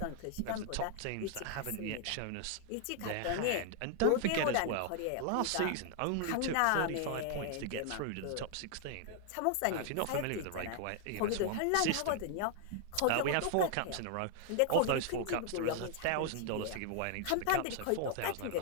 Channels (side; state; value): both; different; correlation 0.00